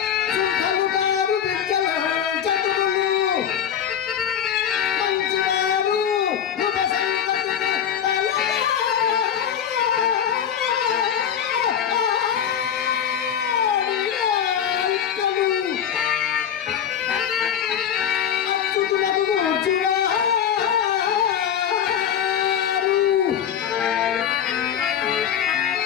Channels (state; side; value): quieter; right; 8.9 dB